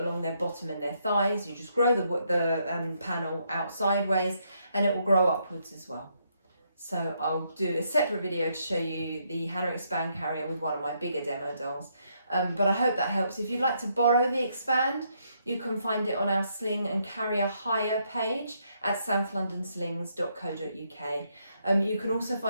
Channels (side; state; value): both; inverted; correlation -0.75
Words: along their bottom and their thighs. You just grow the panel out sideways and it will grow upwards as well. So I'll do a separate video to show you the Hana Expand Carrier with one of my bigger demo dolls. But I hope that helps. If you'd like to borrow the Expand, you can find it on our Sling and Carrier hire page at southlondonslings.co.uk. You can also